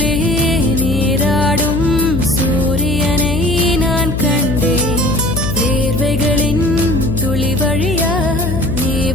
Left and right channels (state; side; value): noise; left; hum, 3 dB below the sound